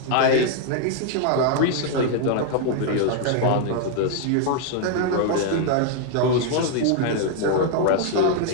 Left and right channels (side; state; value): both; different; correlation 0.00